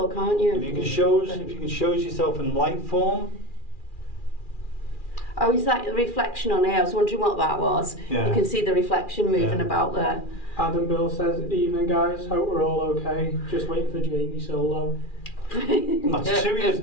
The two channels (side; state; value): right; late; 2.4 ms